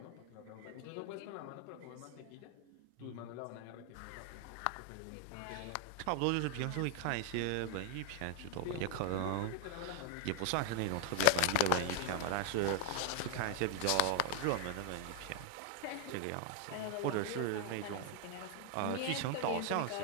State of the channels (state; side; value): different; both; correlation 0.00